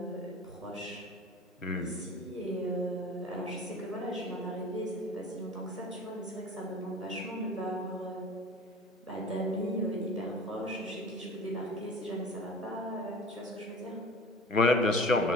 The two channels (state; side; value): normal; both; correlation 0.40